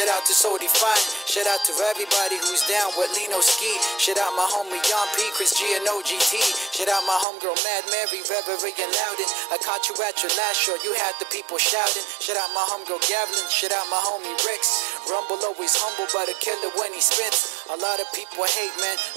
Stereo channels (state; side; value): drops out; left; at 7.2 s